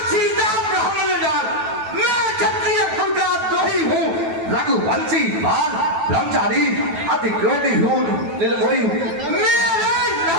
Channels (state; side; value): late; left; 9.2 ms